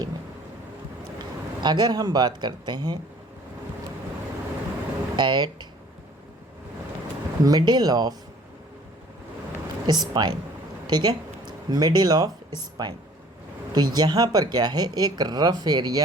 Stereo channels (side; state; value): both; normal; correlation 0.53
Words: में। अगर हम बात करते हैं एट मिडिल ऑफ स्पाइन, ठीक है, मिडिल ऑफ स्पाइन, तो यहाँ पर क्या है, एक रफ